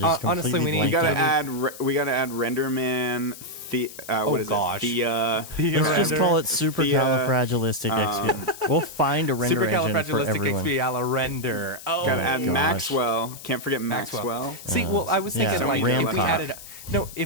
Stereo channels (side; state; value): left; noise; hiss, 15 dB below the sound